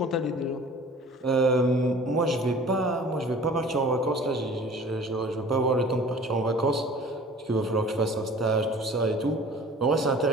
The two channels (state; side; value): normal; both; correlation 0.46